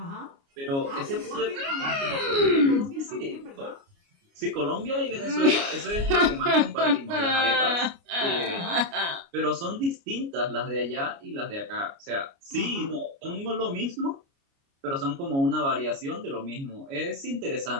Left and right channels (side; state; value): left; late; 29 ms